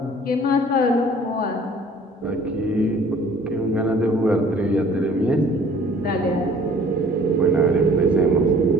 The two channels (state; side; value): normal; both; correlation 0.52